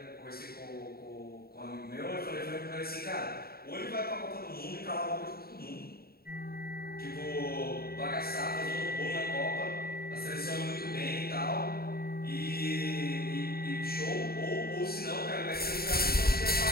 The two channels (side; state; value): right; late; 0.45 ms